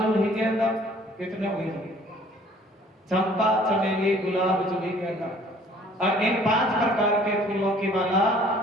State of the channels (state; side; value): normal; both; correlation 0.55